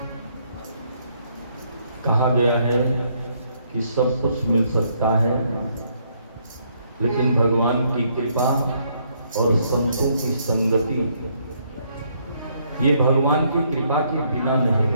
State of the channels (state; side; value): inverted; both; correlation -0.71